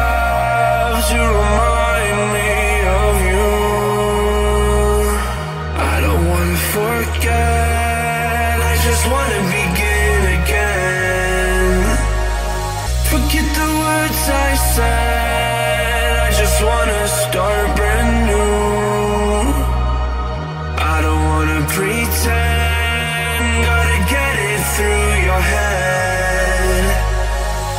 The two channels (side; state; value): both; identical; correlation 1.00